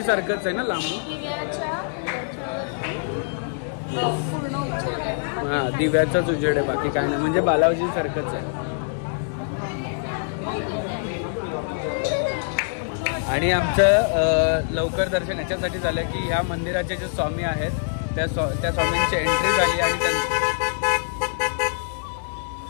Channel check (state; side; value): silent; right; digital silence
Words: सारखंच आहे ना लांबून। हां, दिव्याचाच उजेड आहे, बाकी काय नाही, म्हणजे बालाजी सारखंच आहे। आणि आमचं लवकर दर्शन याच्यासाठी झालं की ह्या मंदिराचे जे स्वामी आहेत त्या स्वामींची एंट्री झाली, आणि